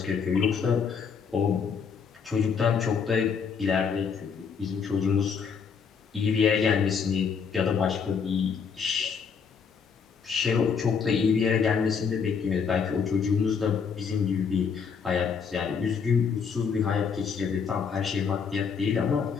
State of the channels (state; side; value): quieter; right; 6.3 dB